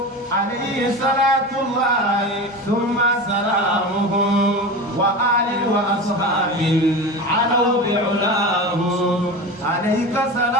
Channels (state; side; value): normal; both; correlation 0.28